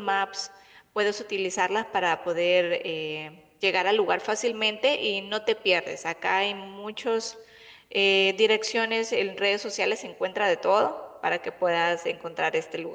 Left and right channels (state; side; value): identical; both; correlation 1.00